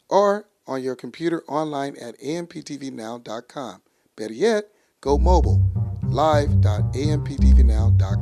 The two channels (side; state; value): both; identical; correlation 1.00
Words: or on your computer online at amptvnow.com. Better yet, go mobile,